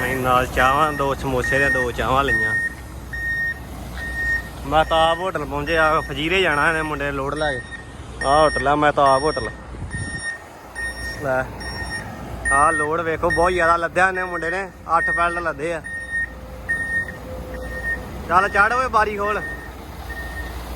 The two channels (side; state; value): both; identical; correlation 1.00